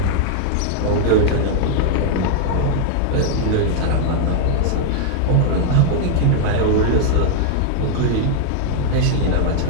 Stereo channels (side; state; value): both; different; correlation 0.00